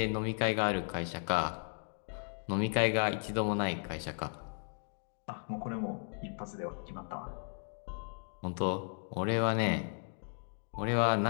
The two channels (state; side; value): silent; right; 54 dB below the other